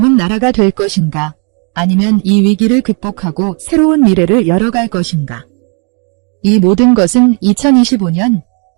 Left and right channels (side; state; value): left; quieter; 36.7 dB